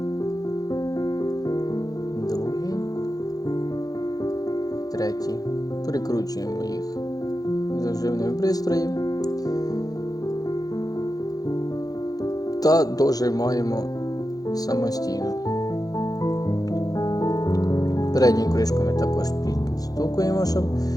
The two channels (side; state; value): right; late; 0.18 ms